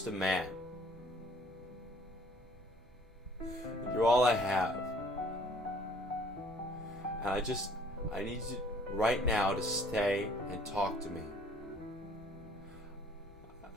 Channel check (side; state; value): both; normal; correlation 0.57